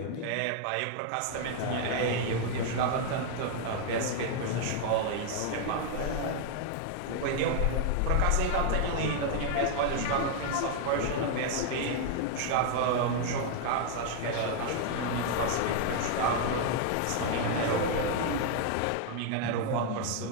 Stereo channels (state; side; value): different; both; correlation 0.00